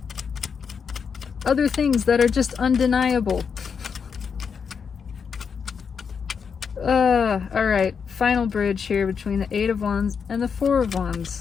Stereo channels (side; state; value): right; quieter; 6.3 dB